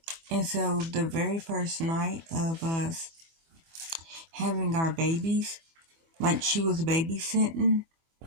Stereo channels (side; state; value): left; late; 24 ms